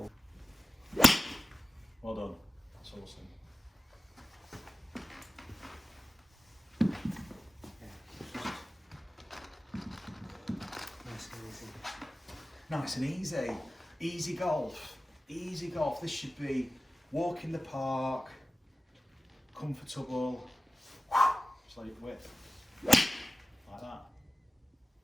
Well done. That's awesome. Nice and easy. Easy golf. Easy golf. This should be walk in the park, comfortable. Just like width. Like that.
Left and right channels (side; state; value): both; normal; correlation 0.96